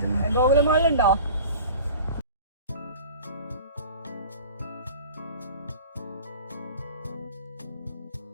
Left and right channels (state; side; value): inverted; both; correlation -0.41